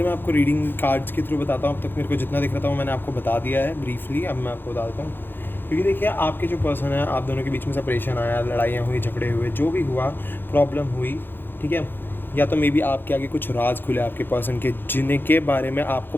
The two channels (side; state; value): right; late; 0.099 ms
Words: मैं आपको रीडिंग कार्ड्स के थ्रू बताता हूँ। अब तक मेरे को जितना दिख रहा था वो मैंने आपको बता दिया है ब्रीफली। अब मैं आपको बता देता हूँ, क्योंकि देखिए आपके जो पर्सन है, आप दोनों के बीच में सेपरेशन आया, लड़ाइयाँ हुई, झगड़े हुए, जो भी हुआ, प्रॉब्लम हुई, ठीक है। या तो मे बी आपके आगे कुछ राज खुले आपके पर्सन के, जिनके बारे में